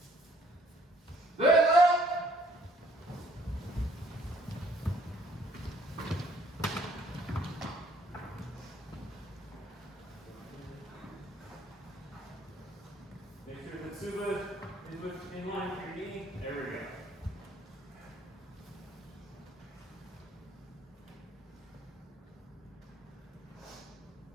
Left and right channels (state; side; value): normal; both; correlation 0.61